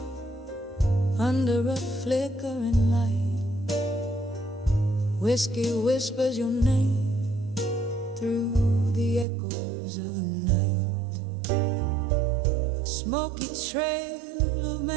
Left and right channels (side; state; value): left; drops out; at 9.2 s